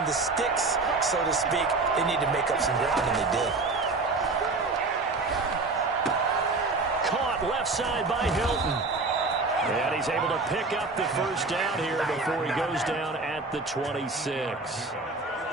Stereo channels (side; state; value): left; quieter; 3.7 dB